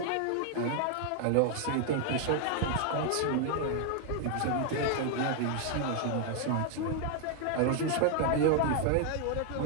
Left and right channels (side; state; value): both; different; correlation 0.00